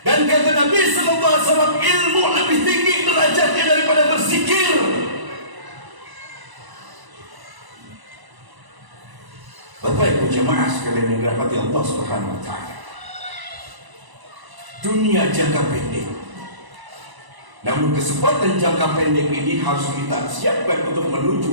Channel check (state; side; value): late; left; 1.0 ms